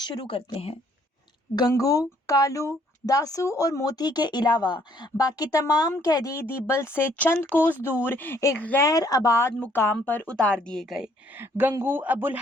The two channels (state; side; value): normal; both; correlation 0.64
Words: کرتے ہیں۔ گنگو، کالو، داسو اور موتی کے علاوہ باقی تمام قیدی دیبل سے چند کوس دور ایک غیر آباد مقام پر اتار دیے گئے۔ گنگو ابو